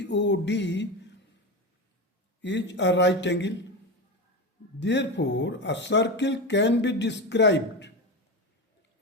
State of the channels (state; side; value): normal; both; correlation 0.20